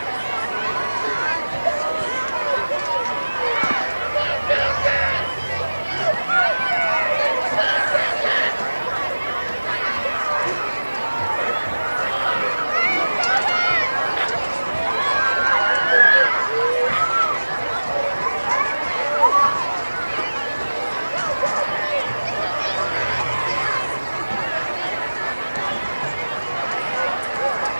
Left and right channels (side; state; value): both; inverted; correlation -1.00